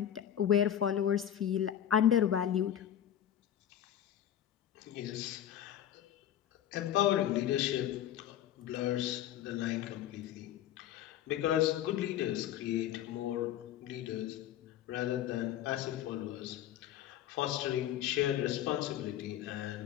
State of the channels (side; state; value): right; quieter; 10.9 dB